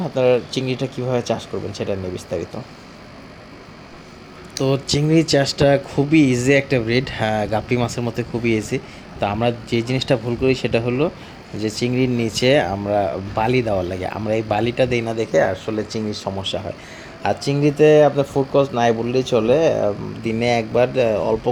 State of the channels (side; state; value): both; identical; correlation 1.00